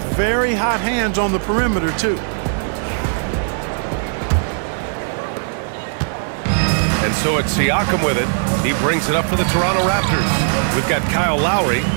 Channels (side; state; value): left; silent; 67 dB below the other